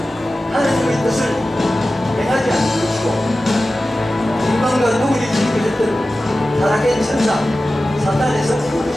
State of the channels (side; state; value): both; normal; correlation 0.95